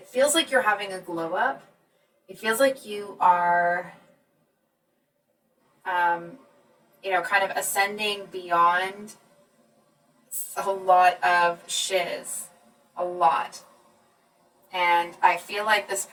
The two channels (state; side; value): identical; both; correlation 1.00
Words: feels like you're having a glow up. It feels like you are, kind of ascending beyond a lot of shiz. A lot. And I feel like this